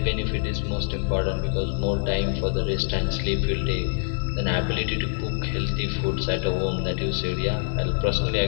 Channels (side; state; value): right; silent; 62 dB below the other